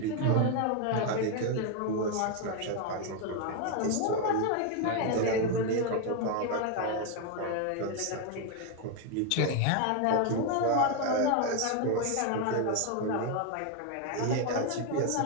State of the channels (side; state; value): both; different; correlation 0.01